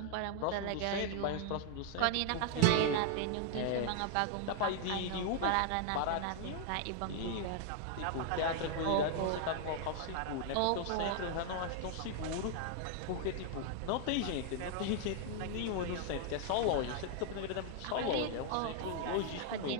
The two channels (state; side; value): different; both; correlation 0.00